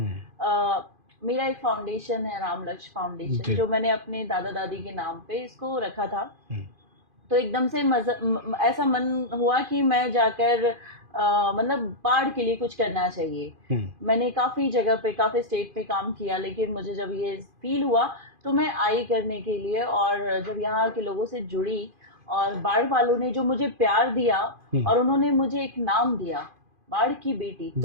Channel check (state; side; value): late; left; 2.5 ms